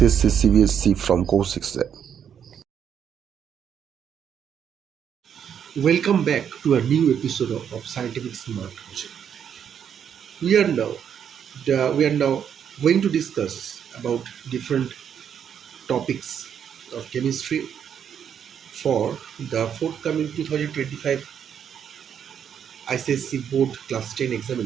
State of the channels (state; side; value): quieter; left; 8.3 dB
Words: CBSC from Course Exam. Welcome back to a new episode of Scientific Smart Coaching. We are now going to discuss about different topics of chemistry for the forthcoming 2025 ICSC Board Class 10